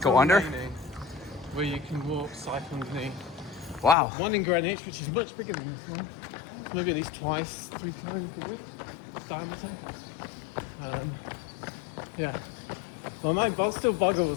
go under? remaining, where you can walk, cycle underneath. Wow. One in Greenwich, which is much bigger than this one. Maybe at least twice, 3 times a week. Diameter. Yeah. Well, my still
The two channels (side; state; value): right; drops out; at 4.0 s